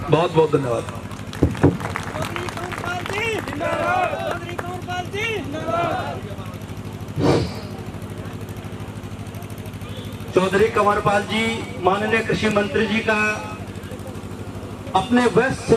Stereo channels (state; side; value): identical; both; correlation 1.00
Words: बहुत बहुत धन्यवाद। चौधरी कंवरपाल जी, माननीय कृषि मंत्री जी का अपने व्यस्त